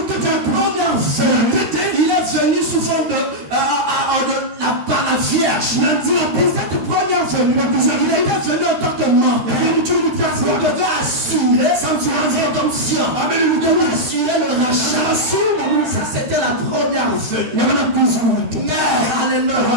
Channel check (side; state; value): left; late; 13 ms